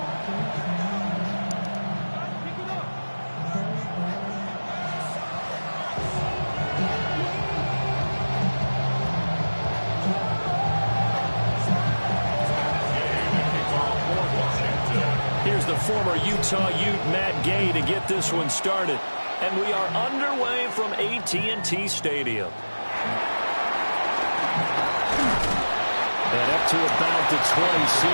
Former Utah Ute Matt Gay to get this one started. And we are underway from AT&T Stadium. And up to about the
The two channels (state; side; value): inverted; both; correlation -1.00